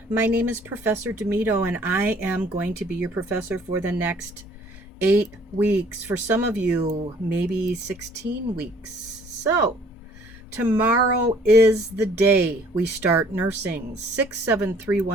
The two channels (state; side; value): normal; both; correlation 0.57